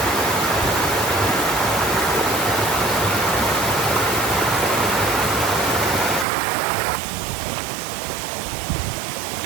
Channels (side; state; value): left; drops out; at 6.2 s